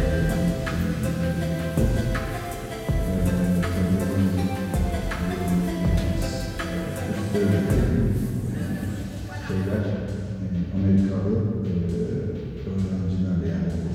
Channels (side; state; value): both; identical; correlation 1.00